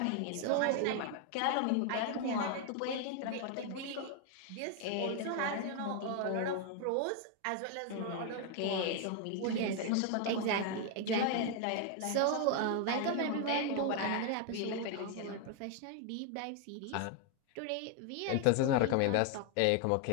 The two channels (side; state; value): both; different; correlation 0.00